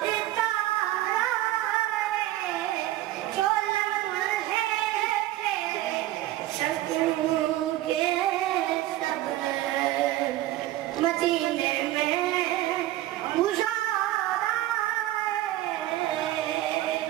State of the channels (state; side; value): quieter; left; 15.2 dB